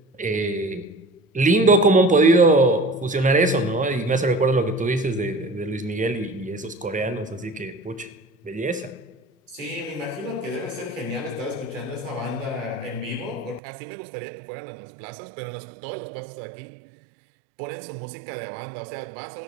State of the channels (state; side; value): drops out; left; at 13.6 s